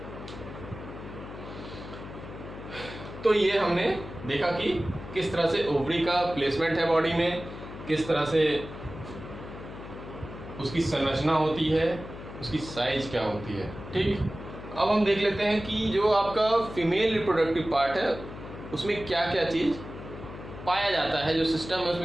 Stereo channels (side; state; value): left; noise; hum, 12 dB below the sound